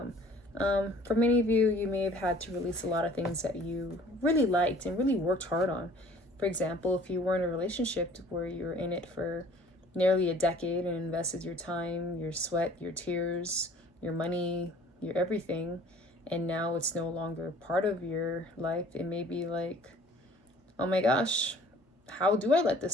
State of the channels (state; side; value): normal; both; correlation 0.52